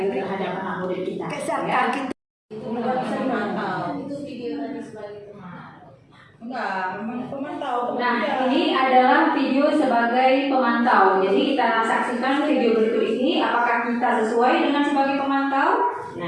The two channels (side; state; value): both; identical; correlation 1.00